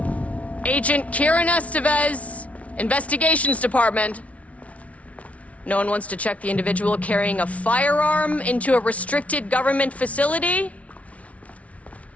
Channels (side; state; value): right; late; 0.066 ms